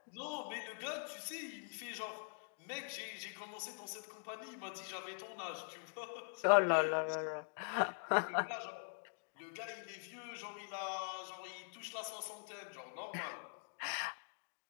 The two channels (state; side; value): silent; right; digital silence